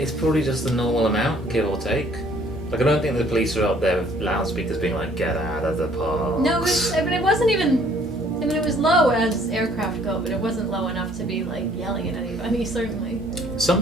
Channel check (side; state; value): both; normal; correlation 0.60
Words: probably just the normal amount, give or take. Like, I don't think the police are up there with loudspeakers being like, get out of the park. No, it wasn't even... I mean, it was low as aircraft go, but it wasn't low enough to be, like, yelling at anybody, certainly. Some